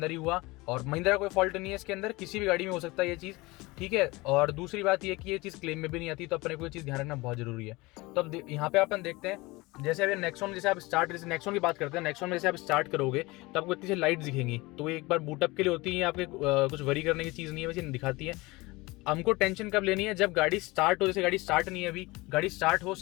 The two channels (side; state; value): right; quieter; 22.5 dB